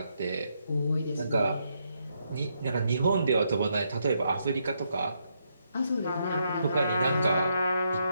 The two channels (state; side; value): inverted; both; correlation -0.78